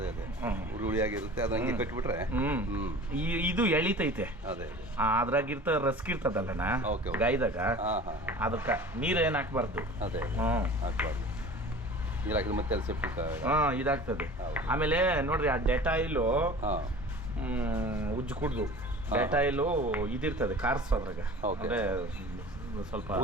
ಹುಳಿಯಾಗಿರುತ್ತೆ, ಅದು ಹಂಗೆ ಕಟ್ಬಿಟ್ರೆ. ಇದು ಎಳಿತೈತೆ, ಅದ್ರಾಗಿರ್ತ ರಸ್ಕಿರ್ತದಲ್ಲಣ್ಣ ಗಾಯದಾಗ, ಅದಕ್ಕೆ ನೀರು ಏನು ಹಾಕ್ಬಾರ್ದು. ಅದೇ ಹಾಕ್ಬಾರ್ದು, ನೀರು ಹಾಕಿದ್ರೆ ಮತ್ತೆ ಸೆಪ್ಟಿಕ್ ಇದಾಗ್ತದೆ. ಆಮೇಲೆ ನೋಡ್ರಿ, ಆ ಡೆಟಾಯಿಲು ಉಜ್ಜು ಕುಡ್ದು ಡೆಟಾಯಿಲು ಇದಿರ್ತದೆ ಕಾರ್ಸು, ಅದ್ರಾಗ ಅಂದ್ರೆ ಸ್ವಲ್ಪ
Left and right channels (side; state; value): both; normal; correlation 0.41